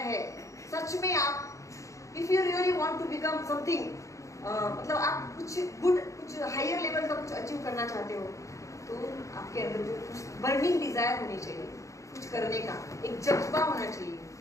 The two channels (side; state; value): right; late; 0.15 ms